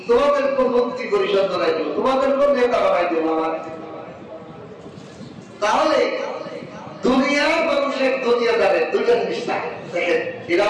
তোমাদের কোন মন্ত্রী পরিষদ বানাই দেব, তোমাদের কোন নেতা বানাই দেব আমার। তাহলে দুনিয়ার মানুষের দুনিয়াদারের দুইটা জিনিস থাকে, দেখেন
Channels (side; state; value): both; identical; correlation 1.00